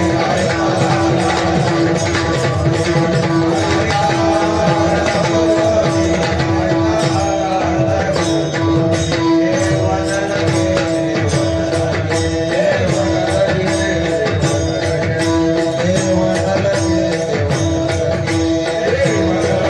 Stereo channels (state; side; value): identical; both; correlation 1.00